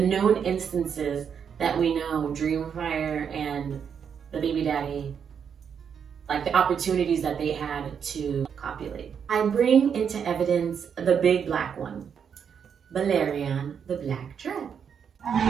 instances that we know Dreamfyre and the baby daddy, like the opportunities that they had to copulate. I bring into evidence the big black one, Balerion, the Black Dread.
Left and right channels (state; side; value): quieter; left; 7.3 dB